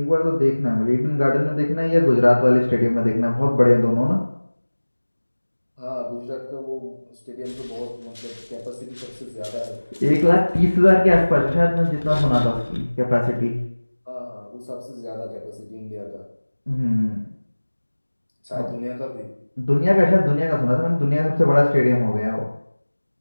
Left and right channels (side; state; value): both; inverted; correlation -1.00